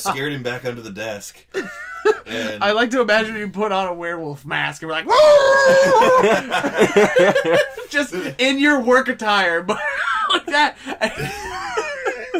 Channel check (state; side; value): identical; both; correlation 1.00